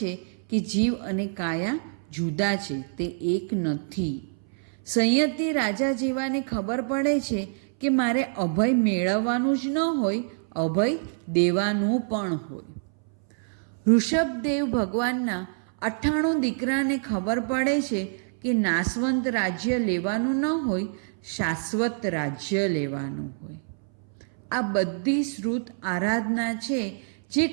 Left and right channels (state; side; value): silent; left; 60 dB below the other